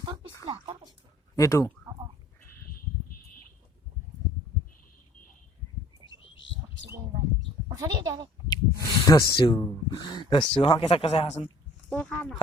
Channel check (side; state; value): both; normal; correlation 0.55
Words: পিছলা এইটো দস্যু হা কেঁচা কেঁচা খাচোন